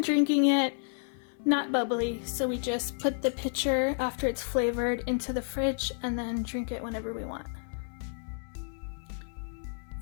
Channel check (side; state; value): right; silent; 57 dB below the other